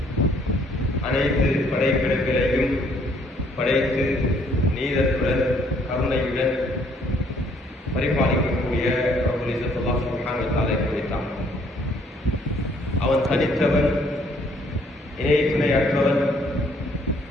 அனைத்து படைப்பிடங்களையும் படைத்து நீதத்துடன் கருணையுடன் பரிபாலிக்கக்கூடிய ரப்புல் இஸ்ஸத் அல்லாஹ் சுப்ஹானஹு வ தஆலா குறித்தான். அவன் தனித்தவன், இணை துணையற்றவன்,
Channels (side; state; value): both; normal; correlation 0.65